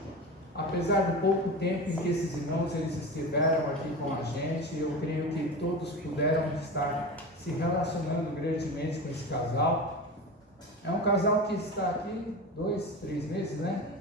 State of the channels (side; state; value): both; normal; correlation 0.28